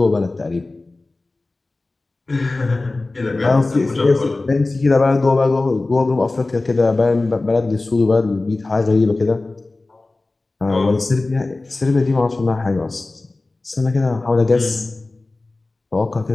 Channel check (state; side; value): quieter; right; 3.2 dB